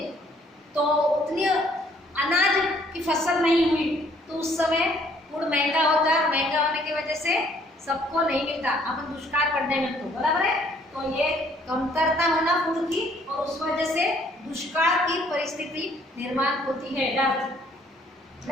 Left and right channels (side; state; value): both; normal; correlation 0.62